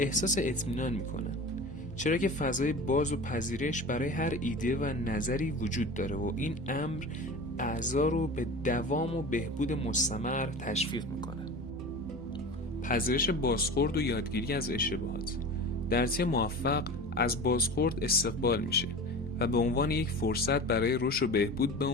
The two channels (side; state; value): both; normal; correlation 0.34